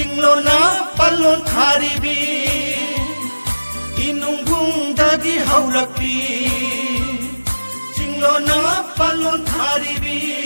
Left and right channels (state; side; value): inverted; both; correlation -1.00